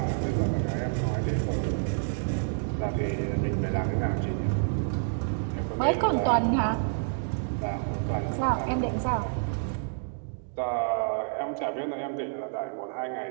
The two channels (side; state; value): left; silent; digital silence